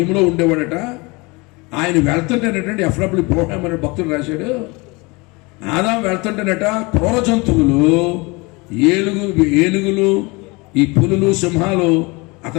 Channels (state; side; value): quieter; right; 26.2 dB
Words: ఉండేవాడట. ఆయన వెళ్తుంటేనటండి, ఎఫ్డబ్ల్యూ ప్రోగ్రామ్ అనే భక్తుడు రాశాడు, ఆదాం వెళ్తుంటేనట క్రూర జంతువులు, ఏనుగులు, ఈ పులులు, సింహాలు